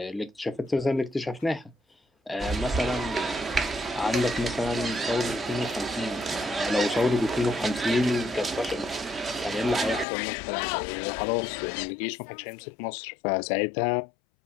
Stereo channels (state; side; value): drops out; right; at 10.1 s